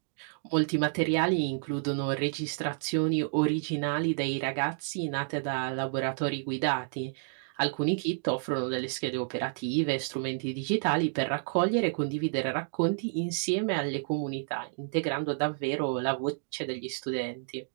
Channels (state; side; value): silent; left; digital silence